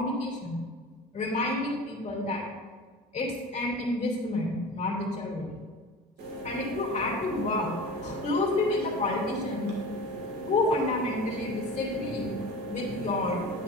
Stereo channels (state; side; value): normal; both; correlation 0.35